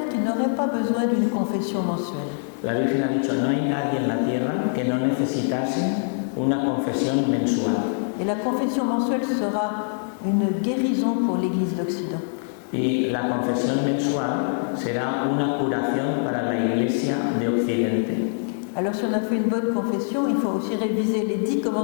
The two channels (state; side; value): silent; right; 61 dB below the other